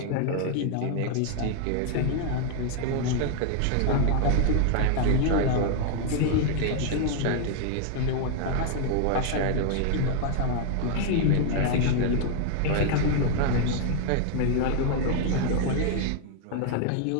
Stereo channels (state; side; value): different; both; correlation 0.00